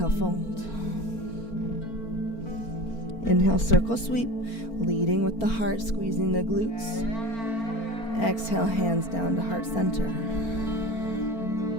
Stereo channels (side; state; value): right; late; 4.4 ms